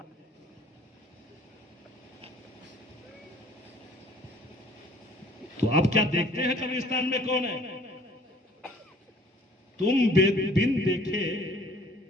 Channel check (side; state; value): both; normal; correlation 0.54